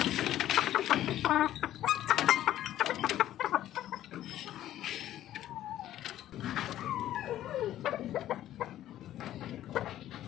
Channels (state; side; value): quieter; right; 12.8 dB